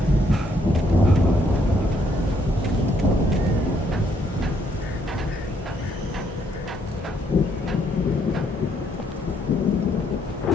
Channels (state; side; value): normal; both; correlation 0.71